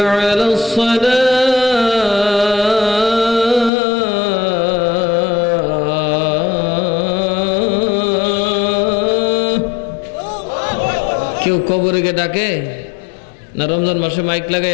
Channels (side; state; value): right; drops out; at 3.7 s